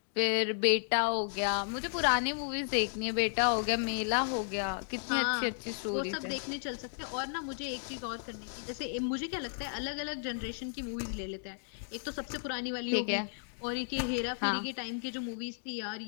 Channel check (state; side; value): silent; right; digital silence